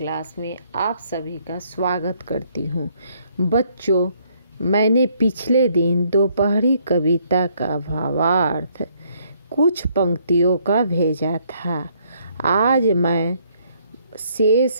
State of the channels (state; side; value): inverted; both; correlation -0.68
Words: में आप सभी का स्वागत करती हूँ। बच्चों, मैंने पिछले दिन दोपहरी कविता का भावार्थ कुछ पंक्तियों का भेजा था। आज मैं